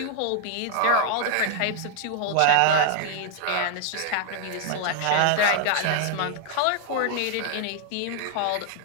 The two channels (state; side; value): different; both; correlation 0.00